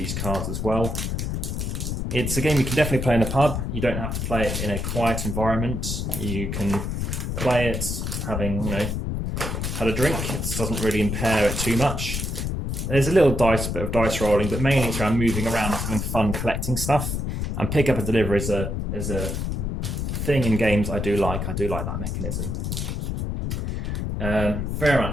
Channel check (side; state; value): left; noise; rumble, 2 dB below the sound